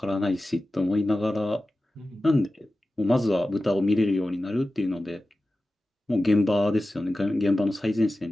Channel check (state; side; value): normal; both; correlation 0.94